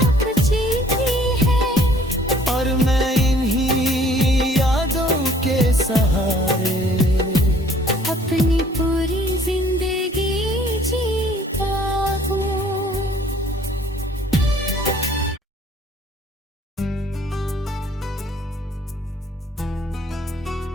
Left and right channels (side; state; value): both; normal; correlation 0.57